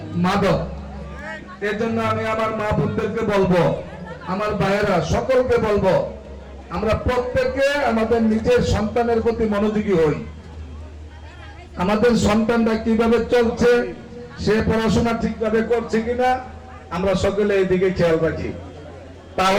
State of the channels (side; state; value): both; identical; correlation 1.00